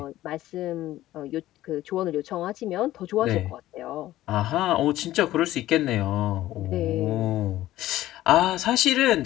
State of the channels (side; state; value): right; quieter; 15.0 dB